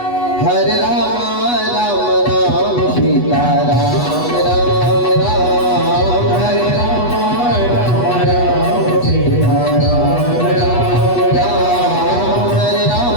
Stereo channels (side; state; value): right; late; 8.2 ms